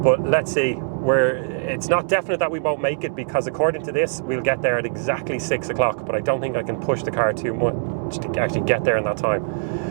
But let's see. It's not definite that we won't make it, because according to this, we'll get there at exactly 6 o'clock. But I don't think I can push the car too much to actually get there in that time.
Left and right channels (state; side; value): silent; left; 64 dB below the other